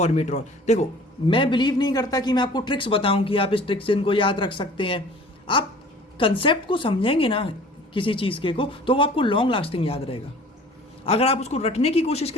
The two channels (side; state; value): both; normal; correlation 0.47